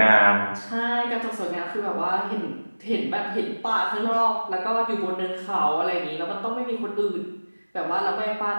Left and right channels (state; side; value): inverted; both; correlation -1.00